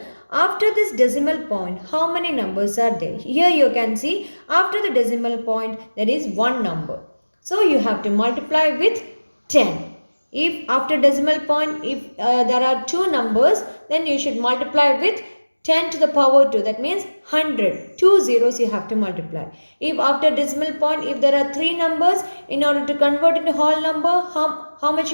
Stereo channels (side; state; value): both; inverted; correlation -1.00